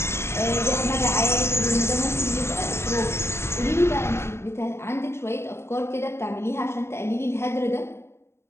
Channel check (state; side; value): late; right; 0.12 ms